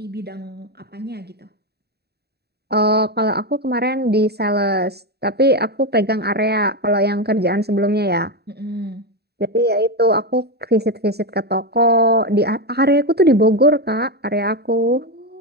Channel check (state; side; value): late; left; 0.47 ms